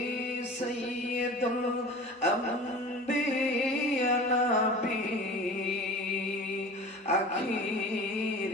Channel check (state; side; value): normal; both; correlation 0.38